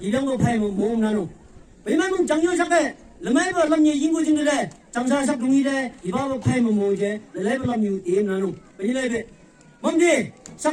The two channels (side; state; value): both; identical; correlation 1.00